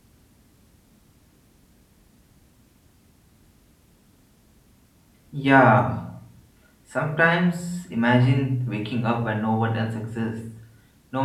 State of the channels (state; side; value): identical; both; correlation 1.00